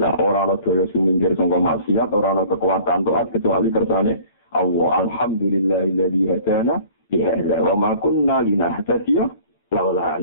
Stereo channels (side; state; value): both; inverted; correlation -0.49